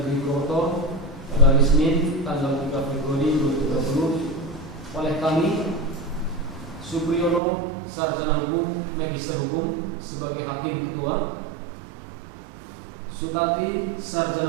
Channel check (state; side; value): drops out; left; at 7.4 s